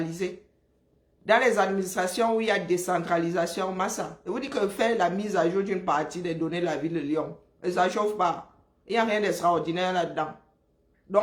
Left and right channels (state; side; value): identical; both; correlation 1.00